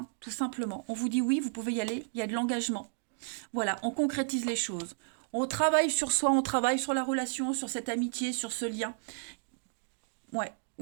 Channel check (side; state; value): left; silent; digital silence